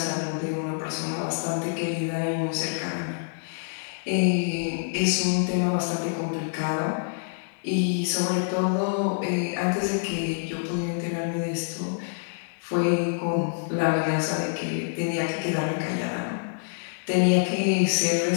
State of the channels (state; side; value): silent; right; 61 dB below the other